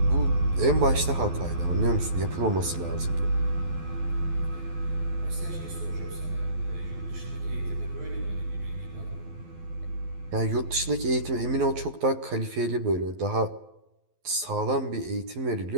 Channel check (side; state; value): left; late; 12 ms